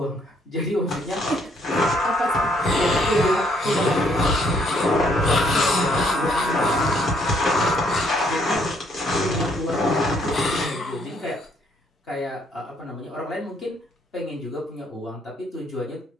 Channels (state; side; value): normal; both; correlation 0.68